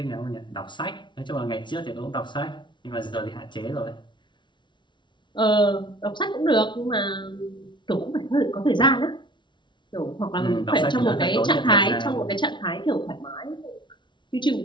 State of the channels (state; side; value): late; right; 0.23 ms